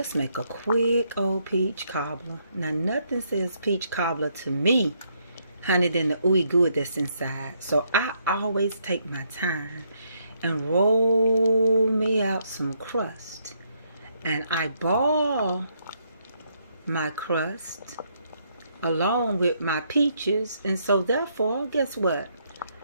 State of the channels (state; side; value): inverted; both; correlation -0.74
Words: make a quick old peach cobbler. Now, nothing says peach cobbler to me, honey, than the ooey gooey that's inside. So I always take my time and roll me out some crust. And I ball my crust along with my peaches. And so therefore, guess what?